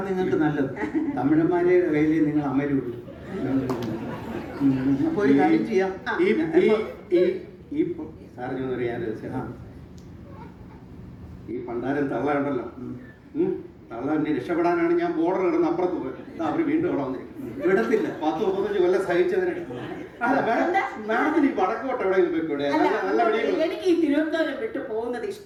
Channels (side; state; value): both; identical; correlation 1.00